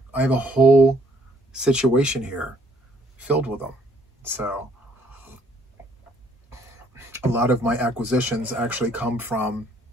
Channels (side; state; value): both; normal; correlation 0.64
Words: I have a whole situation here filled with them. So a lot of my acquisitions actually come from